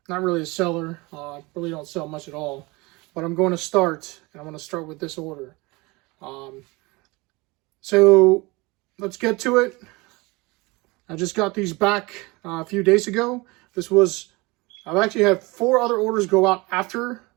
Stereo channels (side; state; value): left; quieter; 24.4 dB